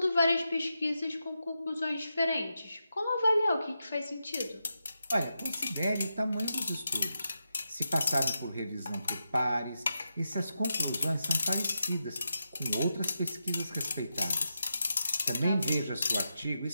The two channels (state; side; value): inverted; both; correlation -0.87